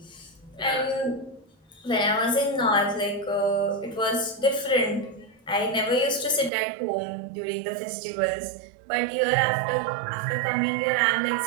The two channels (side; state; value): left; drops out; at 6.5 s